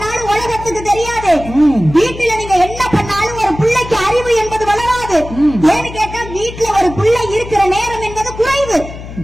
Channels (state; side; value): noise; left; hum, 12 dB below the sound